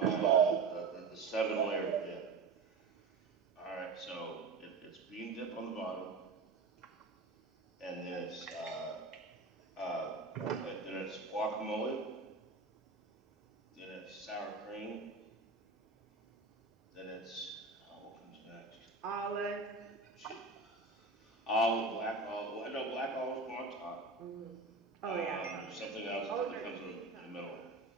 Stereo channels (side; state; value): left; quieter; 4.1 dB